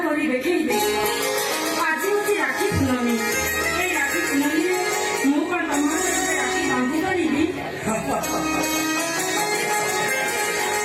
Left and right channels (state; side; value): identical; both; correlation 1.00